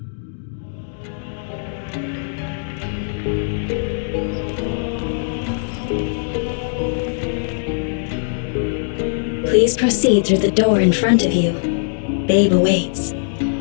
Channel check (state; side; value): silent; right; digital silence